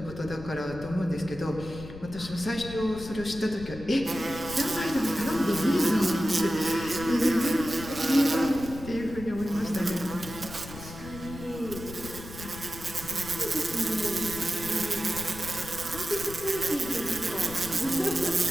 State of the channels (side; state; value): left; noise; rumble, 13 dB below the sound